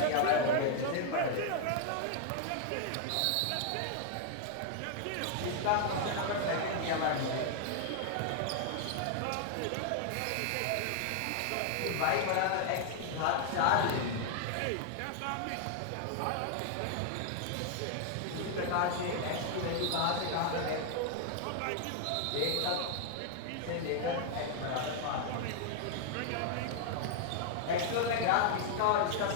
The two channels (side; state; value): both; different; correlation 0.00